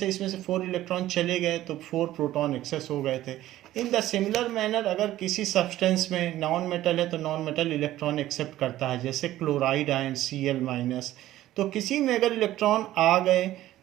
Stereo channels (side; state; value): left; quieter; 14.5 dB